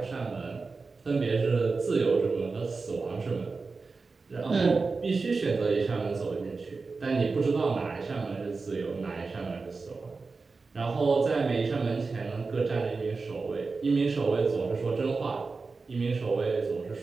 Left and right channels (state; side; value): quieter; left; 4.2 dB